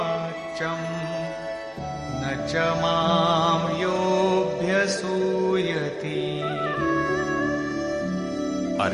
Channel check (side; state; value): both; identical; correlation 1.00